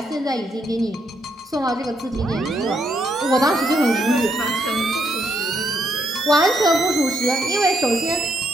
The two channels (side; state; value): both; normal; correlation 0.76